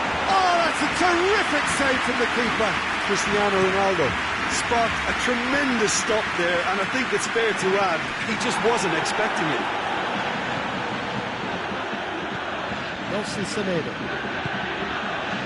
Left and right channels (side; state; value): both; identical; correlation 1.00